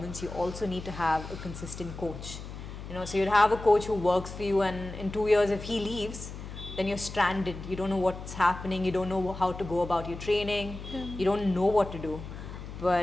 you also need to have a consistent coach. So you'd have a coach who works for you, and in 2 years if he leaves, then you're stranded. You don't know what's happening, you don't know how to go about your training, you don't know what to do.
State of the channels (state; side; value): noise; left; hum, 11 dB below the sound